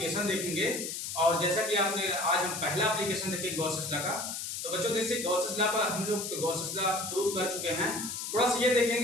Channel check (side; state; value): left; noise; hiss, 5 dB below the sound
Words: देखेंगे और जैसा कि आपने आज हम पहला एप्लीकेशन देखेंगे गॉसेस लॉ का। तो बच्चों जैसे गॉसेस लॉ पर हम लोग गॉसेस लॉ प्रूव कर चुके हैं, थोड़ा सा ये